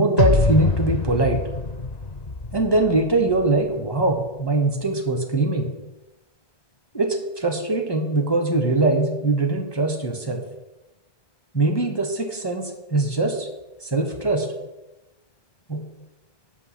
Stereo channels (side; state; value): right; late; 1.2 ms